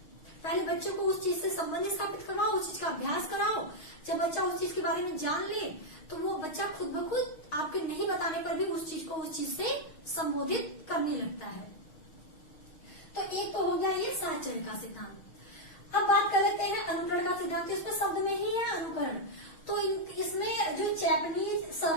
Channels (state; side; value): late; right; 6.3 ms